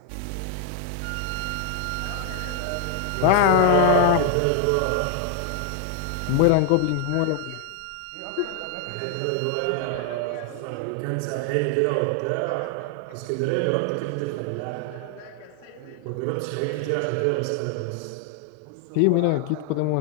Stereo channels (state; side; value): different; both; correlation 0.00